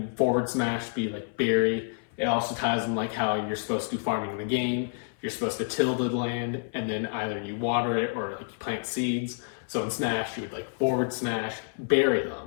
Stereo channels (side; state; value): right; silent; 59 dB below the other